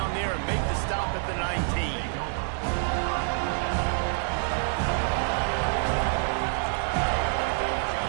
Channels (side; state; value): left; silent; 56 dB below the other